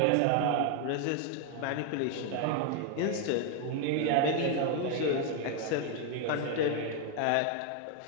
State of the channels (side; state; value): both; different; correlation 0.00